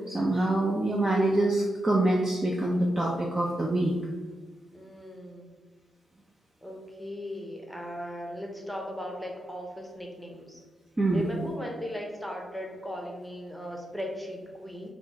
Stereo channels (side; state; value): both; normal; correlation 0.87